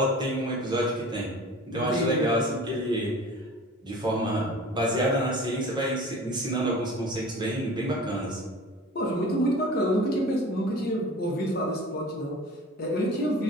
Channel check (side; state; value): both; normal; correlation 0.41